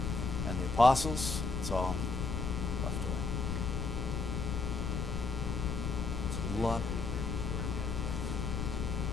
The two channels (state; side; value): noise; left; rumble, 1 dB below the sound